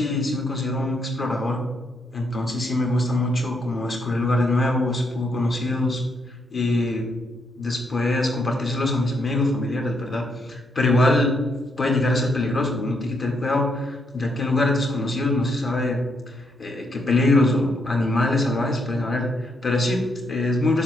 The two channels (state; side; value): normal; both; correlation 0.76